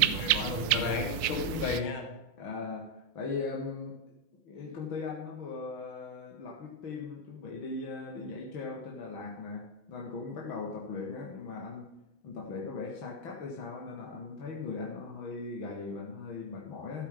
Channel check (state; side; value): late; right; 5.6 ms